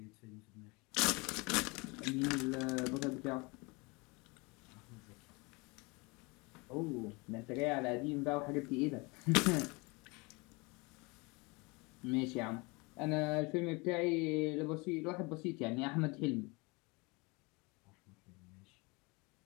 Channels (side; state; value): right; quieter; 27.0 dB